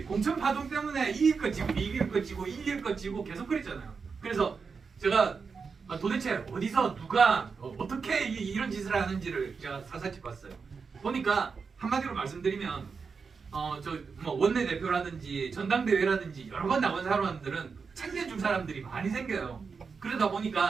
공천 파동 때문에 이길 것 지고 이길 것 지고 이길 것 지고 계속 그랬잖아요. 그래서 제가 도대체 어디서 누가 어떻게 이런 짓을 하는지를 제가 사사치 봤어요. 보니까 한마디로 말씀드리면 원내대표라든지 전당대회라든지 여러 번 나온 사람들은 챙겨줄 사람들이 많이 생겨요. 그러다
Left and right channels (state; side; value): quieter; left; 5.3 dB